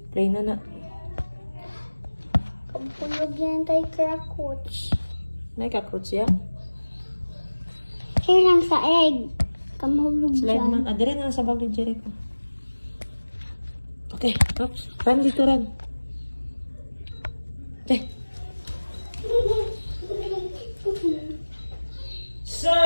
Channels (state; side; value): inverted; both; correlation -1.00